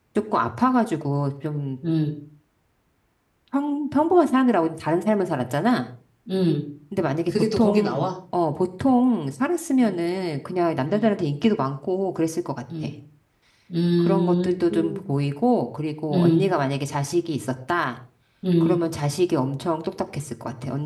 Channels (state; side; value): identical; both; correlation 1.00